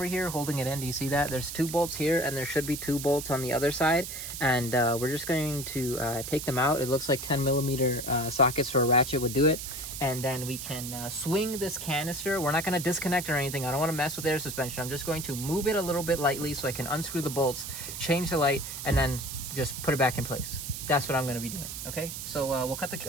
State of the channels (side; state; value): right; noise; hiss, 7 dB below the sound